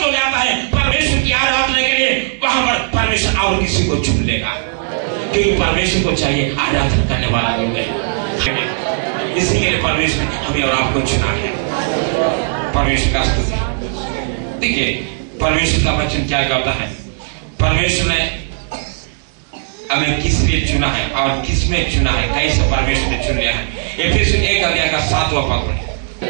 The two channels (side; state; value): left; silent; digital silence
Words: हो जाता है परमेश्वर की आराधना के लिए, वहां पर परमेश्वर और किसी को चुन लेगा, क्योंकि परमेश्वर को चाहिए आराधना करने वाला लोग है। इसी के लिए परमेश्वर ने हमें और आपको चुना है। परमेश्वर का स्तुति। देखिए परमेश्वर का वचन क्या कहता है, परमेश्वर ने हमें किस लिए चुना है और किस में चुना है, कैसे परमेश्वर ने चुन लिया है। एफेसियों 1 अध्याय का 7वां पद पढ़िए।